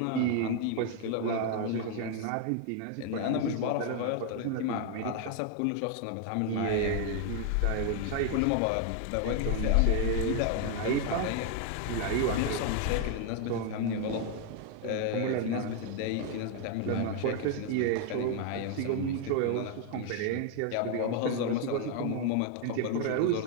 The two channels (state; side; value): different; both; correlation 0.00